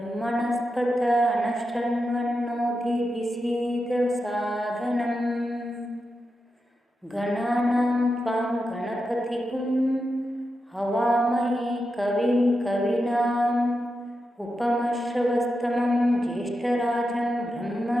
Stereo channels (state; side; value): normal; both; correlation 0.88